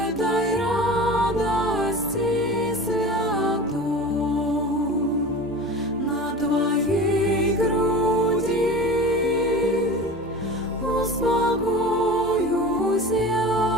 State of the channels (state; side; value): normal; both; correlation 0.34